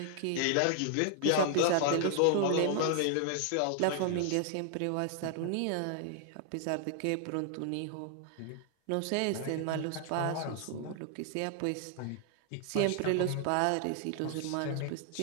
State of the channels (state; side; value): different; both; correlation 0.00